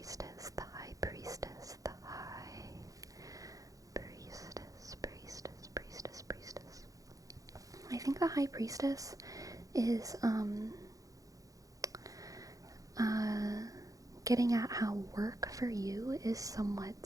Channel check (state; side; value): late; left; 0.17 ms